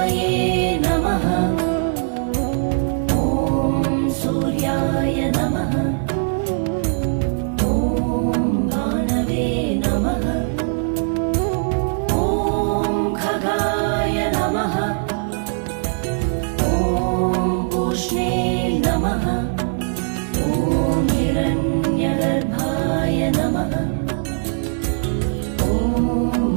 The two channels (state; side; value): silent; left; 65 dB below the other